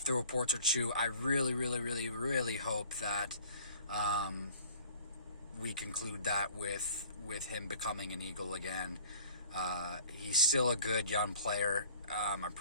the reports are true, I really, really, really, really hope that we conclude that with him becoming an Eagle again. He's still a good young player. I'm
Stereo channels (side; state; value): both; inverted; correlation -0.50